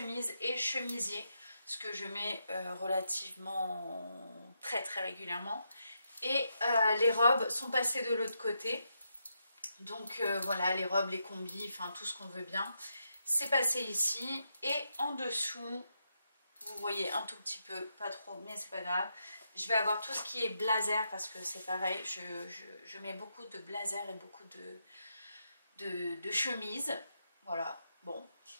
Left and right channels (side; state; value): both; inverted; correlation -0.82